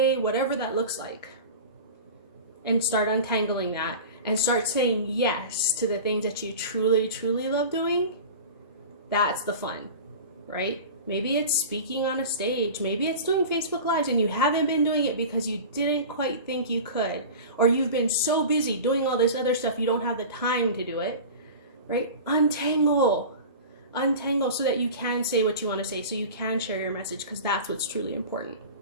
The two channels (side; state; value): both; inverted; correlation -0.34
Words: whatever that looks like. And start untangling that and start saying yes to the things that you truly, truly love doing. That's the fun, right? Maybe it's speaking on a stage. Maybe it's doing Facebook Lives and you haven't been doing it because you didn't quite think you could. Or you've been so busy doing all this other stuff you don't have the time to do it, right? Untangle so that you can say what you want to say, so you can share your message, because that's what's truly important.